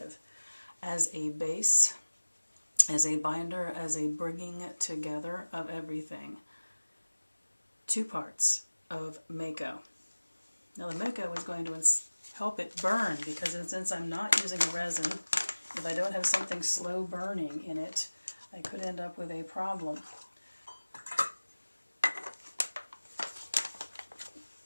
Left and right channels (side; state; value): both; inverted; correlation -1.00